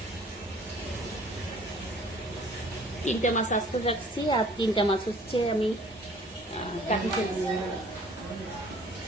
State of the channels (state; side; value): normal; both; correlation 0.53